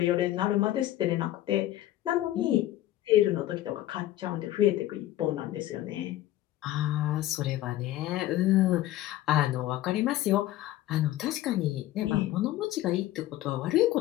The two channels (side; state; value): right; quieter; 14.6 dB